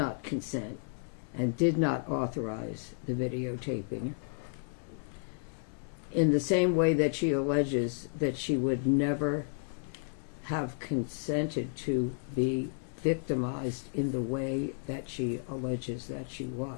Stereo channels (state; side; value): silent; right; digital silence